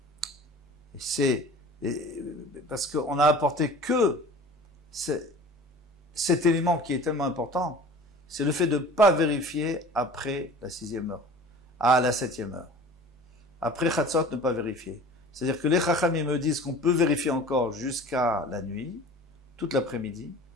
c'est parce qu'on a apporté que cet élément qui est tellement important, c'est le fait de ne pas vérifier après la 6e heure, à la 7e heure. Après Chatzot, ne pas vérifier. C'est-à-dire que les Chachamim me disent qu'on peut vérifier encore jusqu'à la nuit, toute l'après-midi,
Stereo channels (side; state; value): both; normal; correlation 0.42